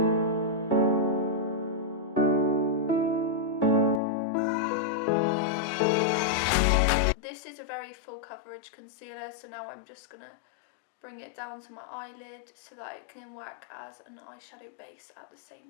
This is a very full coverage concealer, so now I'm just gonna bring it down to my eyelid so that it can work as an eyeshadow base at the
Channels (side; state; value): right; drops out; at 4.0 s